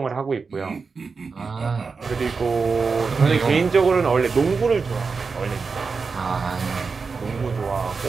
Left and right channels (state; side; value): quieter; left; 4.8 dB